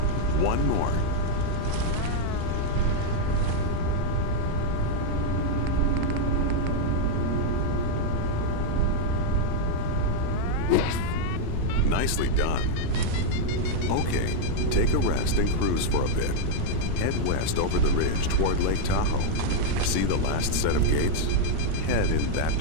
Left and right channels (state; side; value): different; both; correlation 0.00